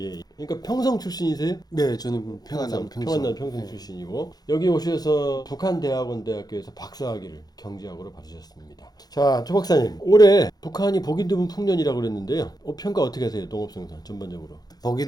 그러니까 평성 출신이세요? 네, 저는 평안남 평성 출신이고, 여기 오셔서 북한대학원대학교에서 박사학위를 경제학으로 받으셨습니다. 자, 조 박사님, 올해 북한이 보기 드문 풍년이라고 그랬는데요. 평가 어떻게 하세요? 농업생산 전반적으로. 보기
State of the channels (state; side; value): late; right; 0.19 ms